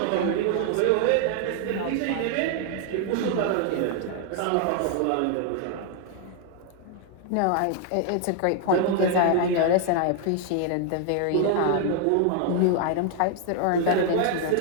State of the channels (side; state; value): both; different; correlation 0.00